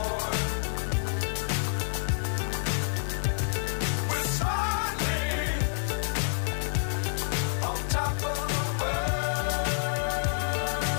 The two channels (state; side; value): silent; right; 59 dB below the other